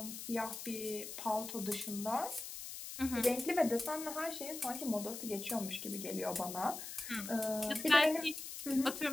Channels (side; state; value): left; noise; hiss, 9 dB below the sound